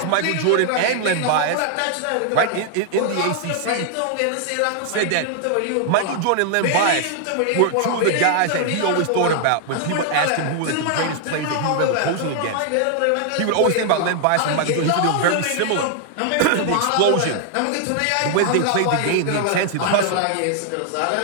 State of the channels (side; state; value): both; different; correlation 0.00